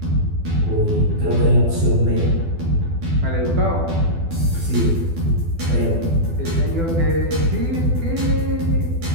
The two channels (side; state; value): left; late; 12 ms